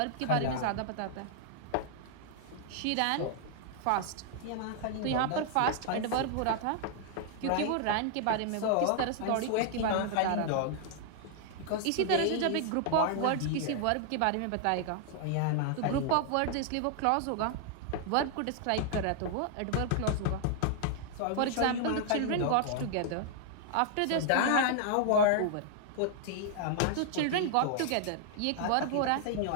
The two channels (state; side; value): different; both; correlation 0.00